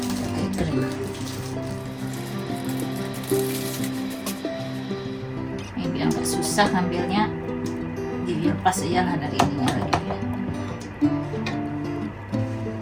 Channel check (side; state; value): both; identical; correlation 1.00